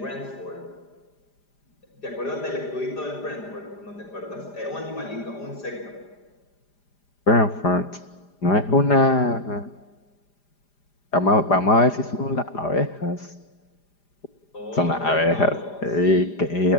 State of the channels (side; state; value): right; late; 5.0 ms